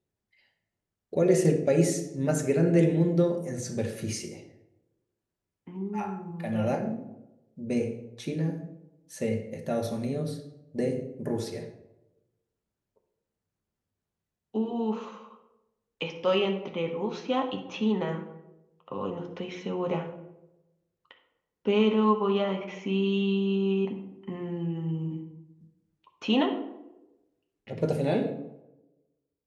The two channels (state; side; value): identical; both; correlation 1.00